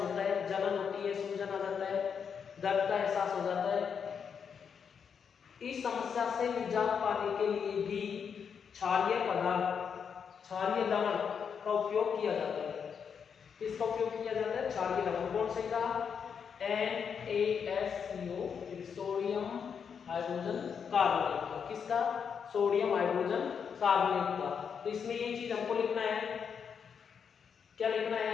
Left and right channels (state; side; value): quieter; right; 6.8 dB